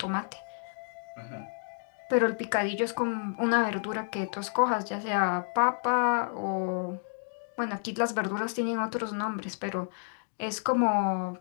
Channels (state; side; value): silent; right; digital silence